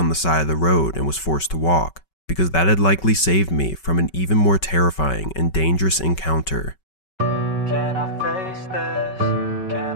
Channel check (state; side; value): late; right; 5.3 ms